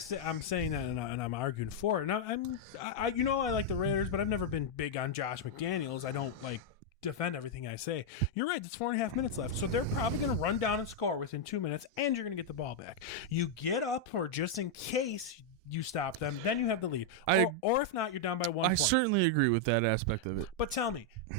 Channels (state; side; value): normal; both; correlation -0.01